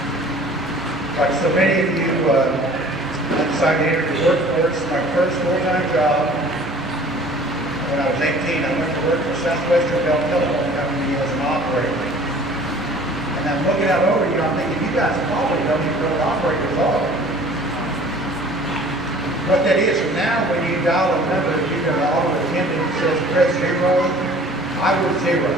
Like so many of you, I decided to enter the workforce. My first full-time job, when I was 18, I went to work for Southwestern Bell Telephone Company as an operator. And I'm looking out over you, I'm thinking, you guys probably don't even know what operators are. What that is, now when you dial a number, you get an auto attendant that says press 0, I was 0.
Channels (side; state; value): both; normal; correlation 0.49